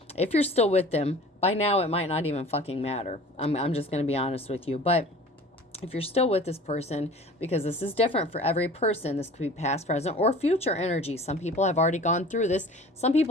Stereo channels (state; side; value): normal; both; correlation 0.43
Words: if you're still with them, by now it might not even fucking matter. I'm just going to be honest with you. But if you're still with this person, because this is different for every person, this could be past, present, or future energy. Some people have already gone through this. Some